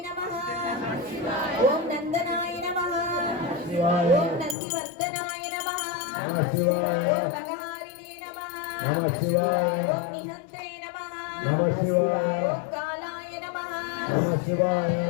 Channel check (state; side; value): drops out; right; at 4.5 s